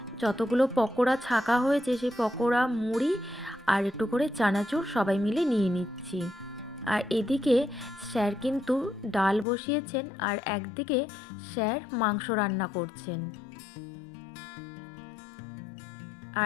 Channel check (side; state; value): right; drops out; at 9.5 s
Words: যতগুলো পকোড়া ছাকা হয়েছে সেই পকোড়া, মুড়ি আর একটু করে চানাচুর সবাই মিলে নিয়ে নিচ্ছি। আর এদিকে স্যার কিন্তু ডাল বসিয়েছেন, আর একদিকে স্যার মাংস রান্না করছেন।